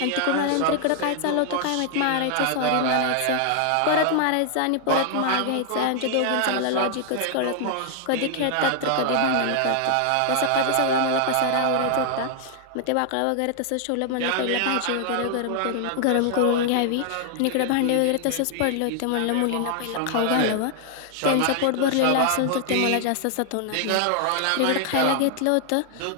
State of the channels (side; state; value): both; different; correlation 0.00